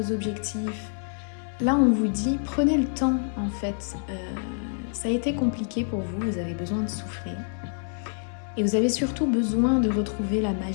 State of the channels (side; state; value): right; silent; 60 dB below the other